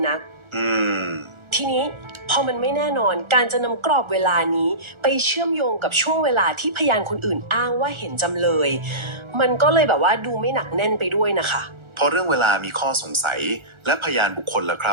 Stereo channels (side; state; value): left; late; 1.4 ms